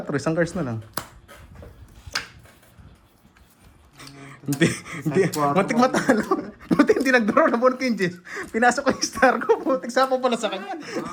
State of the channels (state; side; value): identical; both; correlation 1.00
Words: isang cards na lang. Hindi. Muntik matalo. Muntik hindi nag-draw na bonk yung Jess. Pinasok ko yung star ko. Muntik sapo pala sa kanya.